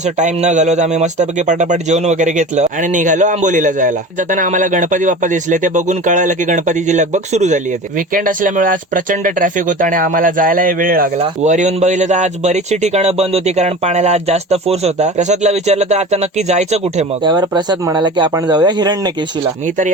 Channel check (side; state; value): both; normal; correlation 0.35